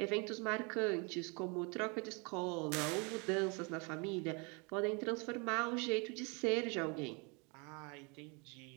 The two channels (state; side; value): quieter; left; 31.6 dB